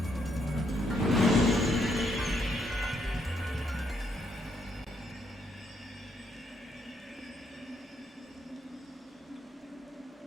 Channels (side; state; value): both; normal; correlation 0.74